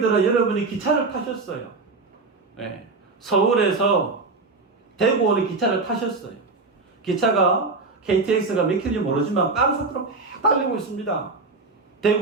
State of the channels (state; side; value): quieter; left; 3.9 dB